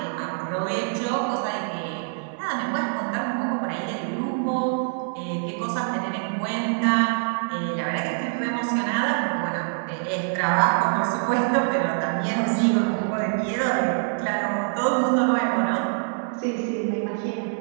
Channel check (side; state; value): left; silent; 59 dB below the other